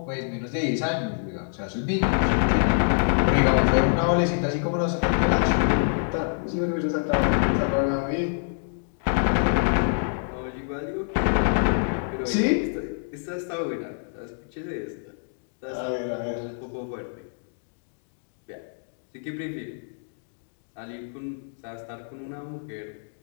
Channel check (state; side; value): silent; right; digital silence